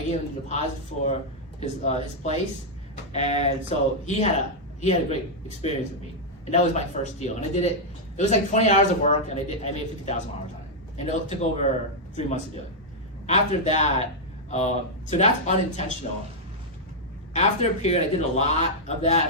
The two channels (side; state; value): both; normal; correlation -0.04